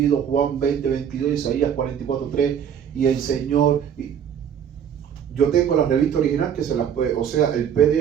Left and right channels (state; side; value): quieter; left; 8.6 dB